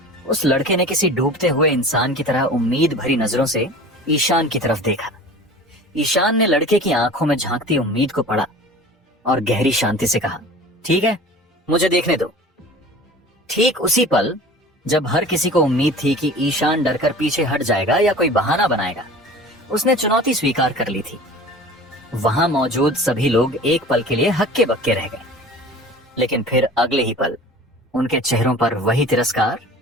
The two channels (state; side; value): normal; both; correlation 0.41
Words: उस लड़के ने किसी डूबते हुए इंसान की तरह उम्मीद भरी नजरों से ईशान की तरफ देखा। ईशान ने लड़के की आंखों में झांकती उम्मीद को पढ़ा और गहरी शांति से कहा, ठीक है, मुझे देखने दो। ठीक उसी पल जब हर किसी को उम्मीद थी कि ईशान डरकर पीछे हट जाएगा या कोई बहाना बनाएगा, उसने चुनौती स्वीकार कर ली थी। वहां मौजूद सभी लोग एक पल के लिए हक्के बक्के रह गए, लेकिन फिर अगले ही पल उनके चेहरों पर वही तिरस्कार,